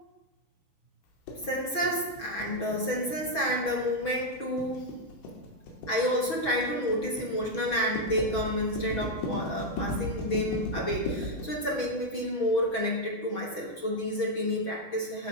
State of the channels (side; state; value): right; late; 6.1 ms